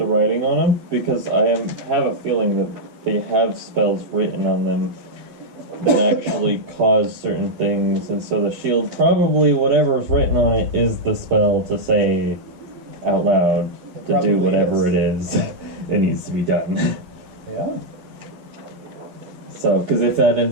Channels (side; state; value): left; late; 11 ms